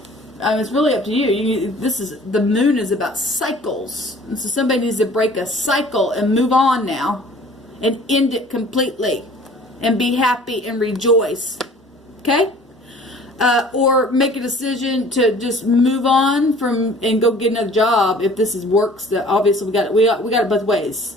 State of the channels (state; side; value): normal; both; correlation 0.50